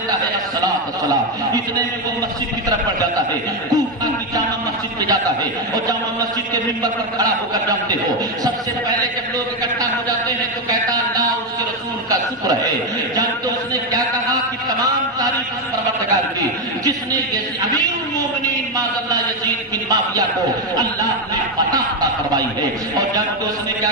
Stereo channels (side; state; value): both; normal; correlation 0.07